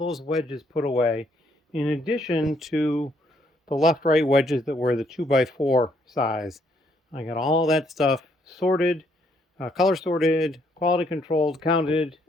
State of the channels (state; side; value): normal; both; correlation 0.70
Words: wedges put away, in addition to the left-right wedges that were the 2x4 size. I got all that stuff sorted, color sorted, quality controlled, counted,